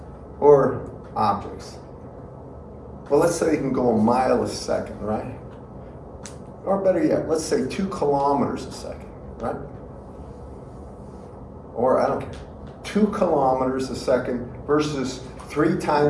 or objects. Well, let's say you can go a mile a second, right? Or better yet, let's say 2 kilometers a second, right? Or I don't care, 2 kilometers a second versus 3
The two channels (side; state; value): both; identical; correlation 1.00